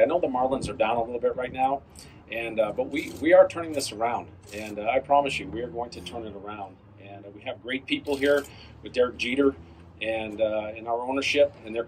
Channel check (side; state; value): both; identical; correlation 1.00